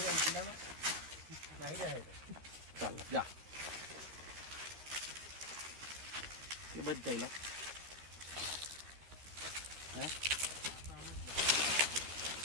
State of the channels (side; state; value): left; late; 13 ms